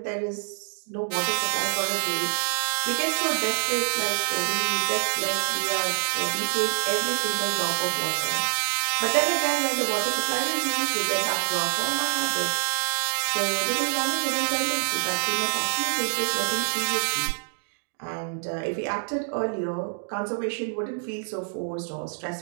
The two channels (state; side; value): silent; left; 61 dB below the other